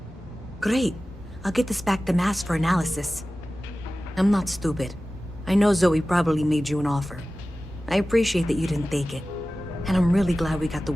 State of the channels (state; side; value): normal; both; correlation 0.96